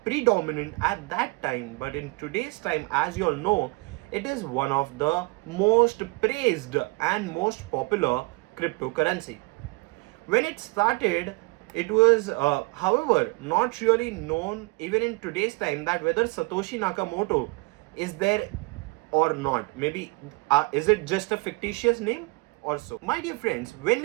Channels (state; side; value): quieter; left; 27.1 dB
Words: predominant at that time, but in today's time, as you all know, it is one of the most praised and most popular cryptocurrency. When it started, it was, however, not really known even in today's time that whether Satoshi Nakamoto is there or not. Maybe is it just a fictitious name or so? My dear friends, when